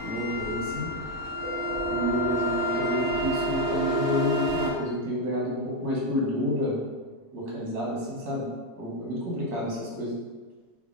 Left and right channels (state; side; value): normal; both; correlation 0.04